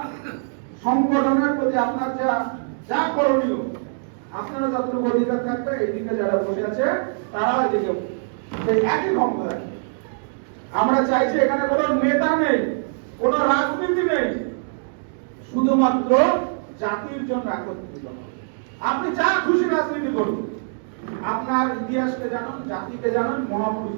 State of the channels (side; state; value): left; silent; digital silence